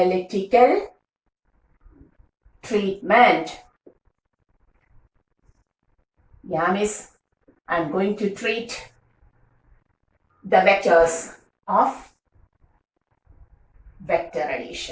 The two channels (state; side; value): identical; both; correlation 1.00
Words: treatment. Yeah, miss, I'm going to treat the vectors of vector